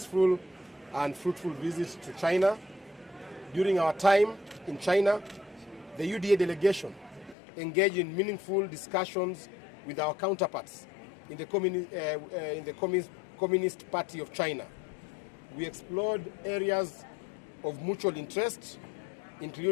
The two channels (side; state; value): right; drops out; at 7.4 s